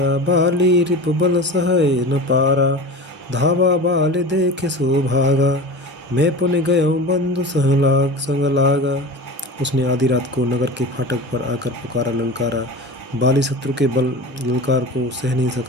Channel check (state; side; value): normal; both; correlation 0.32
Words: बाली रिपु बल सहय न पारा। धावा बाल देखे सो भागा, मैं पुन गयो बंधु संग लागा। उसने आधी रात को नगर के फाटक पर आकर पुकारा, ललकारा। बाली शत्रु के बल ललकार को सह नहीं